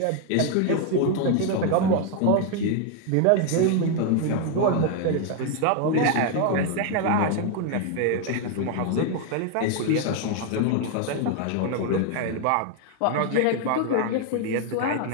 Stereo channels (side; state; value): both; different; correlation 0.00